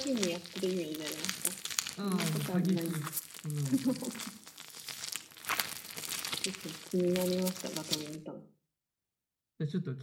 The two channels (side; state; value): both; identical; correlation 1.00